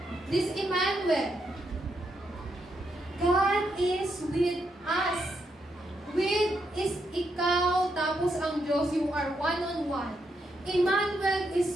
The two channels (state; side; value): normal; both; correlation 0.80